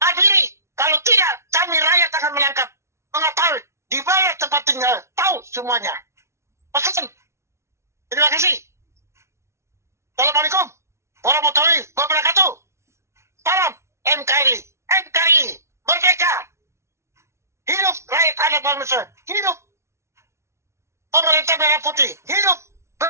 Kalau tidak, kami rakyat akan menangkap. Mengetahui di mana tempat tinggal. Tahu semuanya. Pesan. Terima kasih. Assalamualaikum warahmatullahi wabarakatuh. Salam NKRI. NKRI. Merdeka. Hidup rakyat anak bangsa. Hidup pemerintah merah putih. Hidup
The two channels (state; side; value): late; left; 0.13 ms